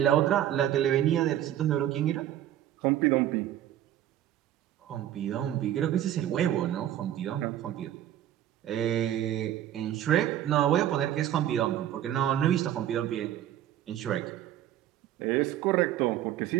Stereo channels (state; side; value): quieter; left; 11.9 dB